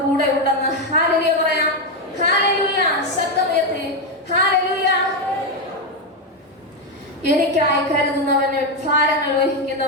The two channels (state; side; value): normal; both; correlation 0.07